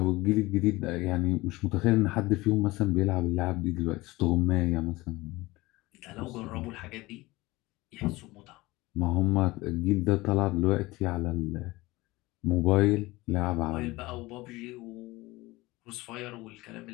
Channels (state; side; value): quieter; right; 20.6 dB